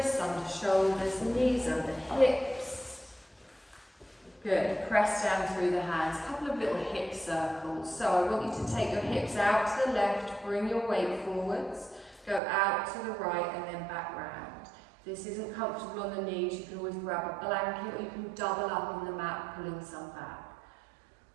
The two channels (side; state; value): left; drops out; at 12.4 s